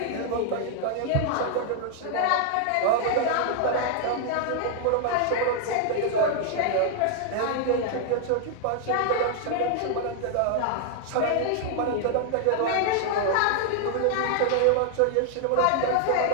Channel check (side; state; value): both; different; correlation 0.00